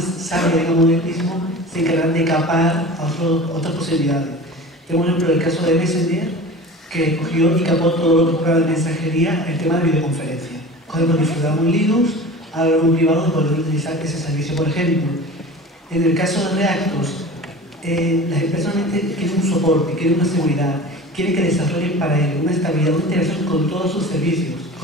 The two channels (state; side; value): normal; both; correlation 0.37